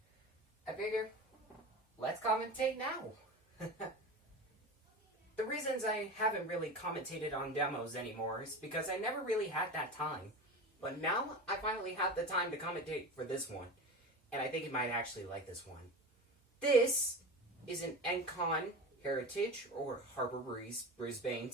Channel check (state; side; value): normal; both; correlation 0.29